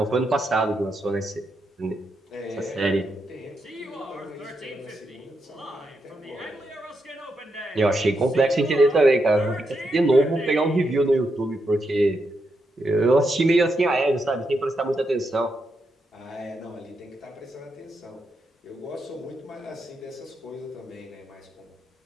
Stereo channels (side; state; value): both; normal; correlation 0.82